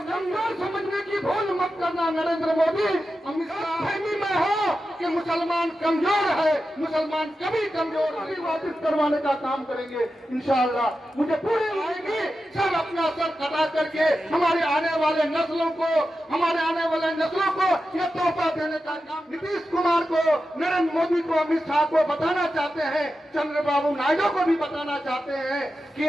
कमजोर समझने की भूल मत करना नरेंद्र मोदी। अमित शाह फहमी में हो कि मुसलमान कमजोर है, मुसलमान कभी कमजोर नहीं। वापस करवाने का काम करेंगे इंशाअल्लाह। मुझे पूरी आएगी सब अपना सर कटा करके हमारे आने वाले नस्लों को ये तोहफा देने का काम नीतीश कुमार को, नरेंद्र मोदी को, अमित शाह को बताना चाहते हैं, चंद्रबाबू नायडू को भी बताना चाहते हैं कि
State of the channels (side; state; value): both; normal; correlation 0.91